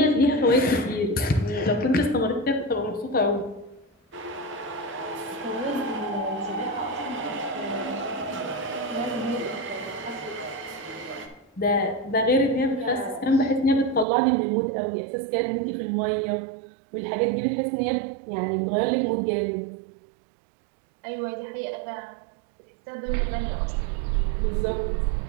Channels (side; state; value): left; drops out; at 14.1 s